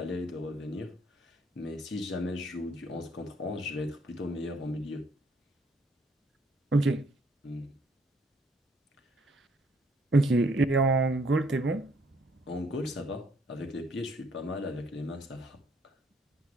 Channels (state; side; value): normal; both; correlation 0.66